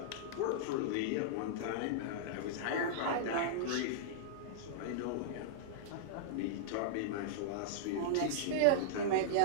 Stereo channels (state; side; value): different; both; correlation -0.02